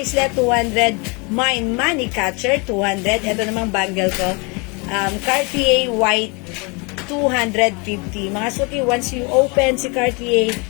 200. Mine, Money Catcher, 200. Ito namang bangle ko. Cartier White, 250. Mga suki, once you open si Cartier,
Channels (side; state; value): right; quieter; 30.4 dB